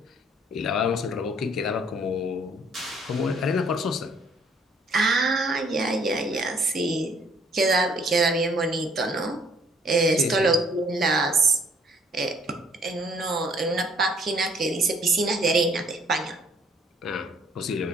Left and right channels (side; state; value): both; normal; correlation 0.62